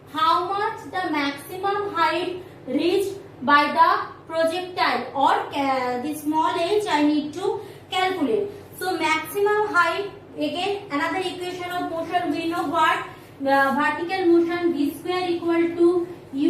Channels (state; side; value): identical; both; correlation 1.00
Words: how much the maximum height reached by the projectile, or the small h I need to calculate. So maximum height, again another equation of motion, we know what? Vertical motion v square equal to